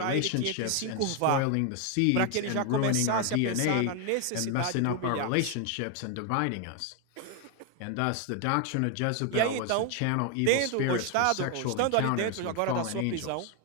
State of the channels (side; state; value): both; different; correlation 0.01